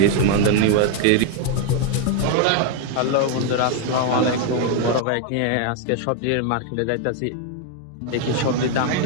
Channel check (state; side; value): different; both; correlation 0.01